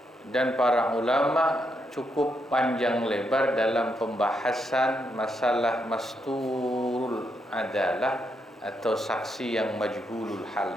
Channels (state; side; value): normal; both; correlation 0.80